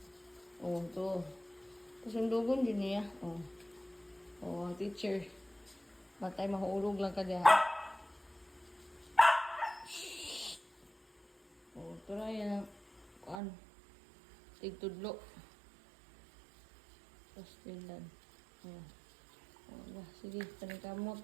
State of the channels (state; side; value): drops out; left; at 13.4 s